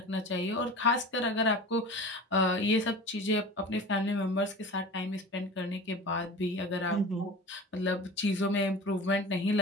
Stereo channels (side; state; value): both; normal; correlation 0.36